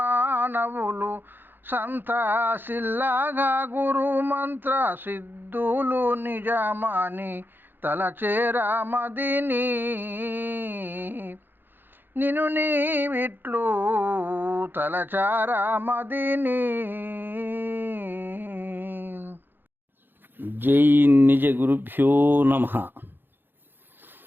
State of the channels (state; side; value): late; left; 0.097 ms